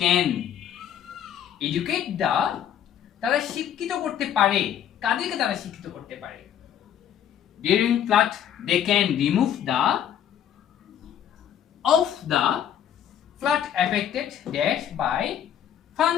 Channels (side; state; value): right; quieter; 9.8 dB